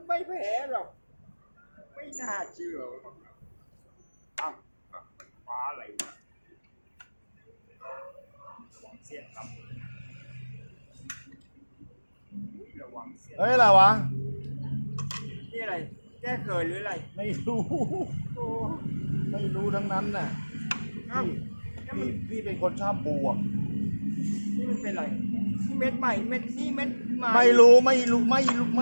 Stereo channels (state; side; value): inverted; both; correlation -1.00